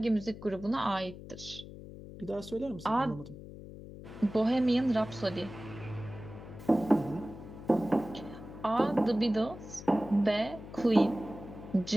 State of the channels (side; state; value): left; noise; hum, 14 dB below the sound